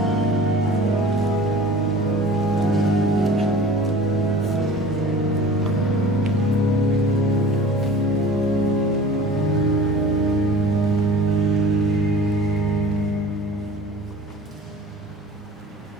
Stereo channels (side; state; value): both; normal; correlation 0.43